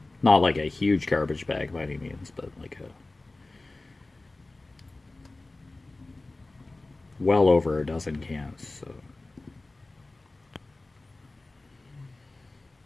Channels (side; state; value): right; quieter; 3.1 dB